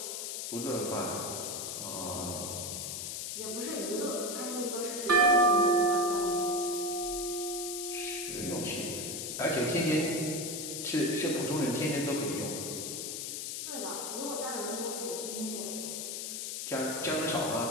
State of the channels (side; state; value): left; noise; hiss, 4 dB below the sound